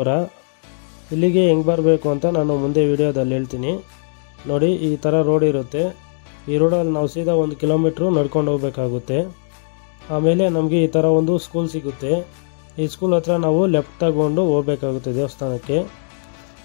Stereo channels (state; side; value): silent; right; digital silence